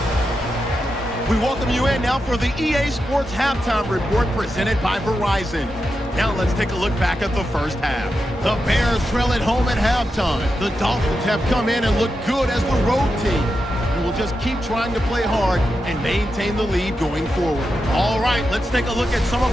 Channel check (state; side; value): normal; both; correlation 0.88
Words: We welcome you in now for the EA Sports Halftime Report presented by Verizon. Now let's take a look back at the first half. The Bears trail at home at halftime. The Dolphins have come in and looked good as the road team. And we'll just keep trying to play hard and maintain the lead going forward. All right, let's take a look at some of